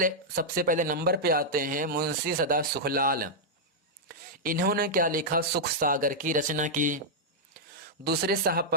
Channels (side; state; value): both; normal; correlation -0.06